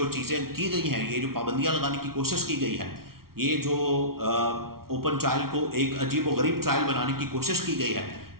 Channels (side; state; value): left; late; 0.94 ms